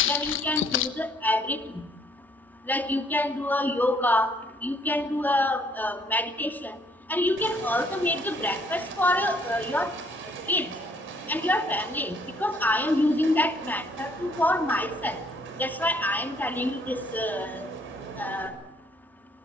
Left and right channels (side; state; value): both; normal; correlation 0.64